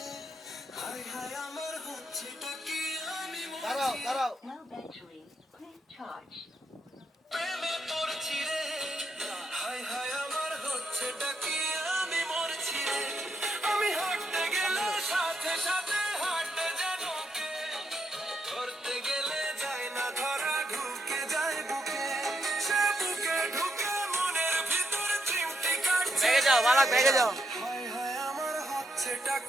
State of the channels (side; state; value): both; normal; correlation 0.79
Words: হায় হায় আমার হচ্ছেটা কি আমি দাঁড়াও No battery. Please charge. প্রেমে পড়ছি রে হায় হায় আমার হচ্ছেটা কি আমি মরছি রে আমি হাঁটতে গেলে সাথে সাথে হাঁটতে যেন কে ধরতে গেলে যায় না ধরা ঢুকে যায় বুকে সে বুকে ঢুকে মনের ভিতর চিমটি কাটছে ভেগে যাও বালাক ভেগে যাও হায় হায় আমার হচ্ছেটা